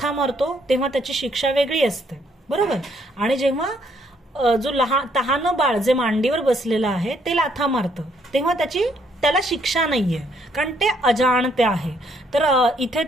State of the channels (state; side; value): normal; both; correlation 0.69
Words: मारतो तेव्हा त्याची शिक्षा वेगळी असते, बरोबर. आणि जेव्हा जो तहानं बाळ जे मांडीवर बसलेलं आहे ते लाथा मारतं तेव्हा त्याला शिक्षा नाहीये, कारण ते अजाणते आहे. तर इथे